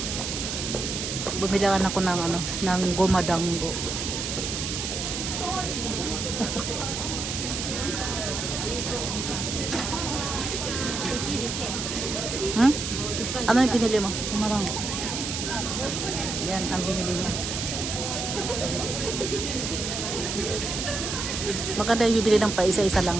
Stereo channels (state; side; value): noise; right; hiss, 3 dB below the sound